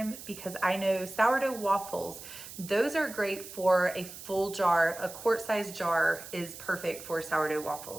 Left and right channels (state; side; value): noise; right; hiss, 13 dB below the sound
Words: because I know sourdough waffles, those are great for a full jar. A quart-sized jar is perfect for sourdough